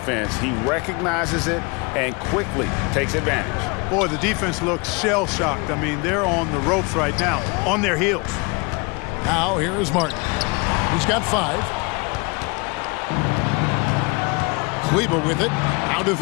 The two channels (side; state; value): right; quieter; 28.7 dB